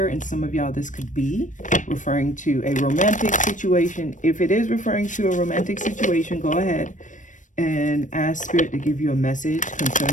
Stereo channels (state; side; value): late; right; 0.37 ms